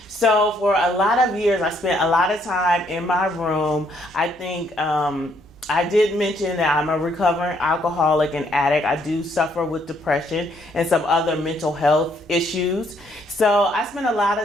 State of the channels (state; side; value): normal; both; correlation 0.69